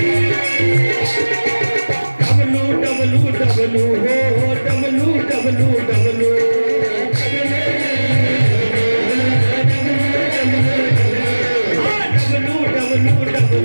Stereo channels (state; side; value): inverted; both; correlation -1.00